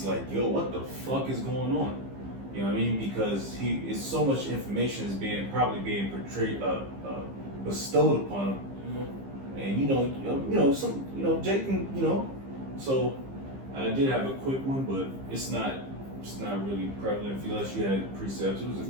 like, yo, what the fuck is going on? You know what I mean? Because it's so much information is probably being portrayed, bestowed upon him, and Jake can, you know, so I did have a quick one, but it's not really prevalent unless you had precepts.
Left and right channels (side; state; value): left; late; 15 ms